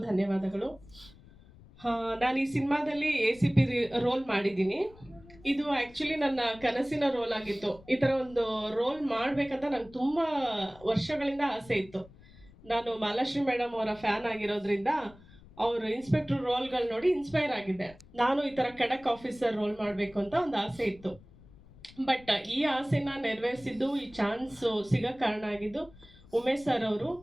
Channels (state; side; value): noise; left; rumble, 23 dB below the sound